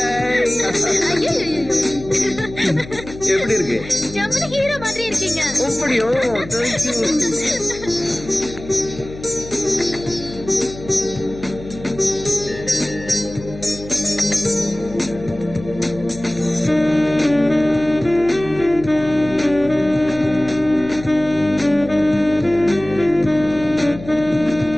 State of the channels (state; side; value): noise; left; hum, 14 dB below the sound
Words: எப்படி இருக்கு? ஜம்முனு ஹீரோ மாதிரி இருக்கீங்க. அப்படியோ?